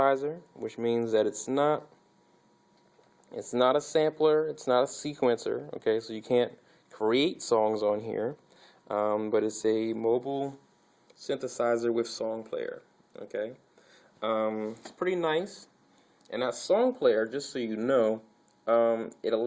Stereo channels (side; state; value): both; identical; correlation 1.00